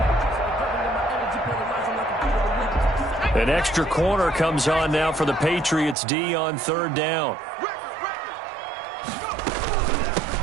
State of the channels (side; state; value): left; drops out; at 6.0 s